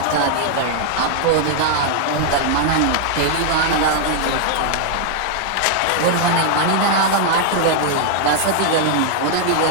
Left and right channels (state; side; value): different; both; correlation 0.00